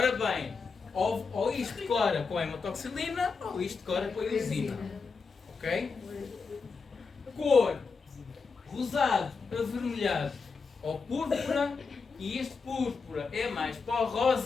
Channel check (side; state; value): right; quieter; 4.9 dB